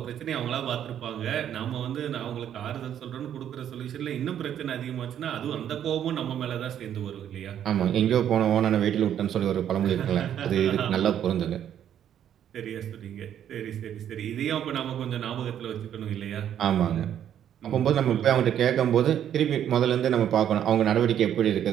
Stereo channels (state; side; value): quieter; left; 10.0 dB